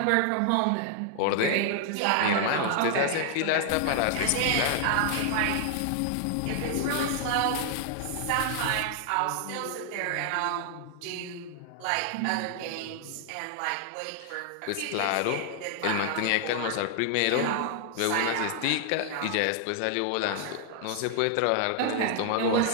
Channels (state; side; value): different; both; correlation 0.00